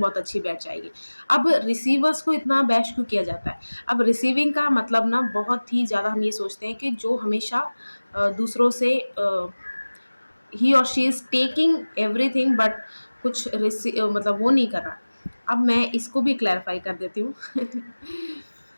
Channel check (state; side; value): inverted; both; correlation -1.00